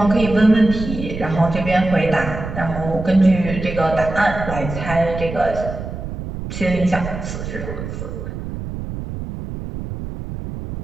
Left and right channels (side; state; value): right; noise; rumble, 8 dB below the sound